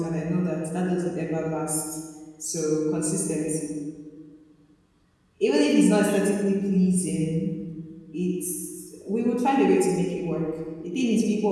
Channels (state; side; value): identical; both; correlation 1.00